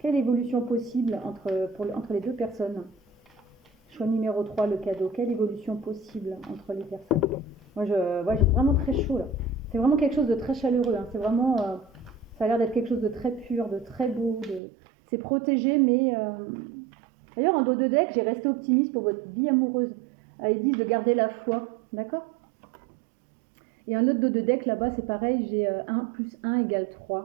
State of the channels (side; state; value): left; drops out; at 14.6 s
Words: évolution possible entre les deux personnes? Choix numéro 3, le cadeau. Quelle évolution possible entre les personnes? Moi, j'ai vraiment très chaud là. C'est vraiment quelque chose de très chaleureux. Hein. C'est vraiment. Ça a l'air d'être quelque chose de très pur, de très beau. C'est protégé, mais. D'ailleurs, en dos de deck, j'ai resté optimiste pour votre vie amoureuse. Ils disent de garder la foi. D'accord? Et un autre dos de deck là-bas, c'est pareil. J'ai 1 plus 1 égale